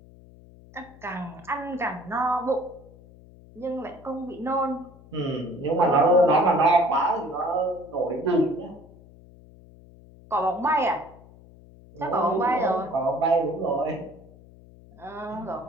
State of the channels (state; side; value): noise; left; hum, 23 dB below the sound